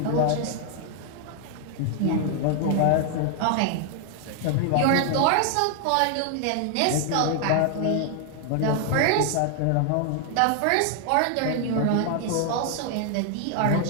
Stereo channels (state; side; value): different; both; correlation 0.00